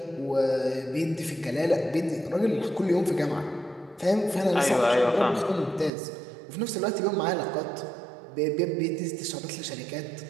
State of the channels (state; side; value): drops out; left; at 5.9 s